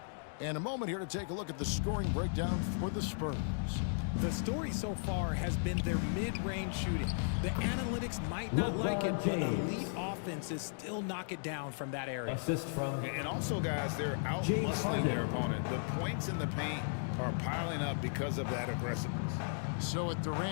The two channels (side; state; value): right; silent; digital silence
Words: And a moment here to take a look at the scoring breakdown for the Spurs. The story so far has been their mid-range shooting. The analytics might not like it, but elite offenses still knock it down from that area. Assist from And also, guys, they're out-muscling their opponent. The points in the paint are piling up because of that aggressiveness. So with